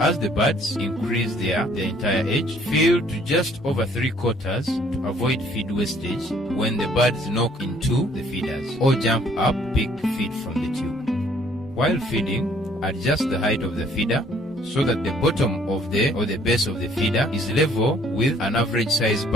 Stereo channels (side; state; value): both; normal; correlation 0.61